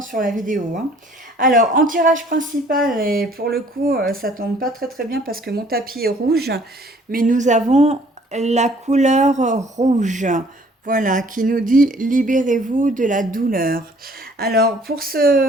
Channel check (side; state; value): both; normal; correlation 0.57